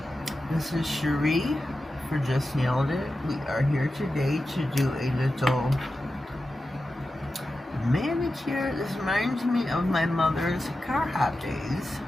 This is Cherie for Just.nailedit. We are here today to do a little manicure. This reminds me of my mother's car hop days,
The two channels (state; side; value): normal; both; correlation 0.92